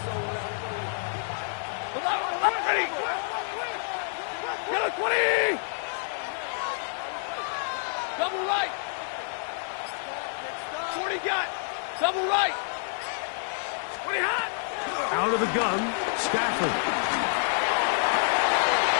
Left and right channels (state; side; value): silent; right; digital silence